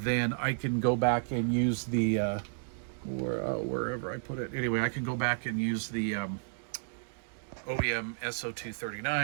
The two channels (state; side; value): silent; left; digital silence